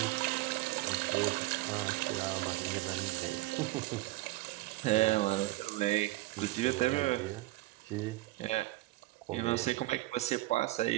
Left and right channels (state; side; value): quieter; left; 18.7 dB